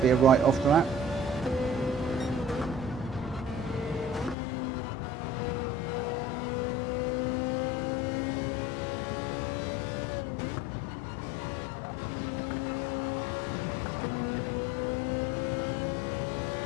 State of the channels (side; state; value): right; drops out; at 4.4 s